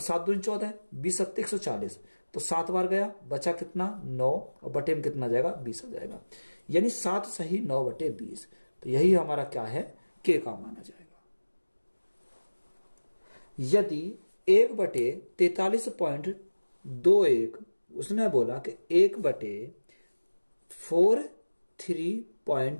दूनी 14, 20 सत्ते 140, तो 7 बार गया, बचा कितना 9, और बटे में कितना जाएगा, 20 हो जाएगा, यानी 7 सही 9/20, तो यही हमारा क्या है, के का माना जाएगा। यदि 1/43.21 उसने बोला कि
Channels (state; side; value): inverted; both; correlation -1.00